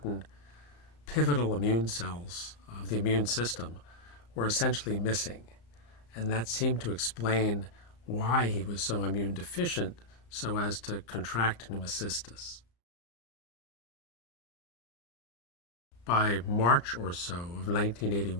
pivotal immune cells of the immune system, were essentially missing. And that seemed to explain why he was so immune deficient so as to contract pneumocystis. By March or so of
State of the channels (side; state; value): right; late; 34 ms